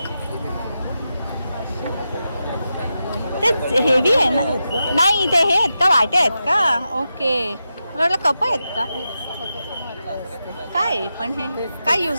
ते हेवी आहे ना. नाही ते हे आहेत का, वाटे आहेत का? ओके, मला वाटलं कप आहेत का काय. पण हे काय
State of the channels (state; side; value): inverted; both; correlation -0.89